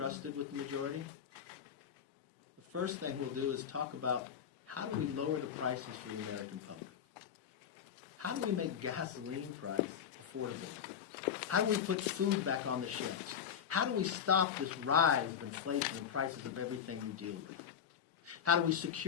with the majority? The first thing we'll do is talk about how do we lower the prices for the American public? How do we make gasoline price affordable? How do we put food back on the shelves? How do we stop this rise of inflation and prices of everything we deal with? How do we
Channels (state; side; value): quieter; right; 8.2 dB